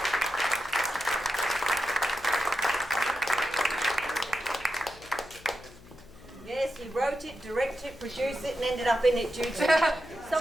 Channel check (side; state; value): left; noise; hum, 21 dB below the sound